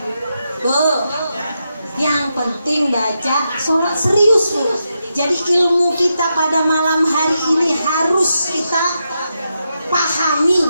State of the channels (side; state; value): both; inverted; correlation -0.85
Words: Bu, yang penting baca sholat serius Bu. Jadi ilmu kita pada malam hari ini harus kita pahami,